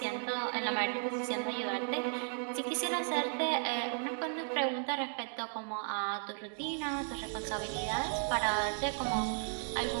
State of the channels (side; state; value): left; silent; 54 dB below the other